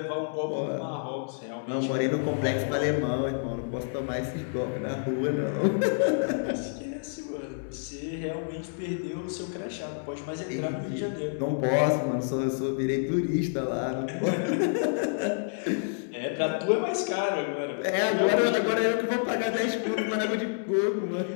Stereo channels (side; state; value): right; silent; 59 dB below the other